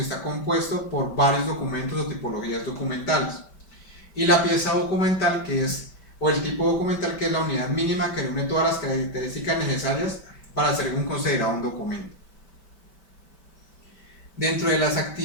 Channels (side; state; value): right; late; 5.1 ms